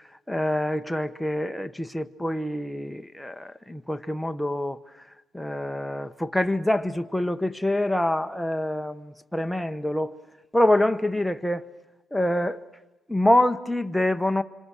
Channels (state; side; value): normal; both; correlation 0.96